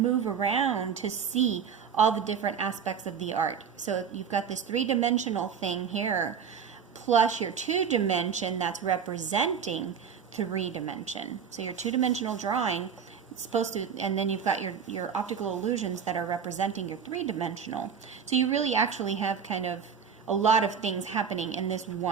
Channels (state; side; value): quieter; left; 7.1 dB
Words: around to see all the different aspects of the art. So you've got this three-dimensional thing here, plus your two-dimension that's representing three-dimension. So your two-dimensional drawing, it's supposed to, and then you've got your optical illusions that are representing your three-dimensional. So you really actually have kind of a lot of things happening in this